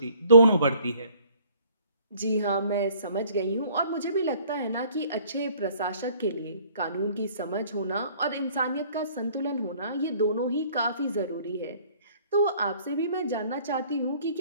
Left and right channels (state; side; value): inverted; both; correlation -0.57